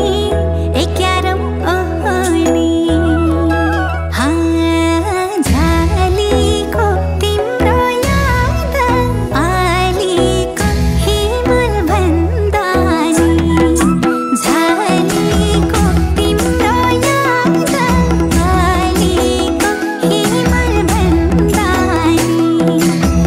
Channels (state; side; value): identical; both; correlation 1.00